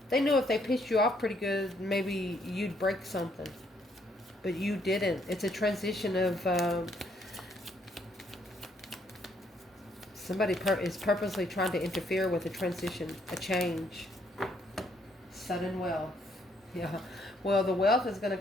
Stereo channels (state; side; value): normal; both; correlation 0.70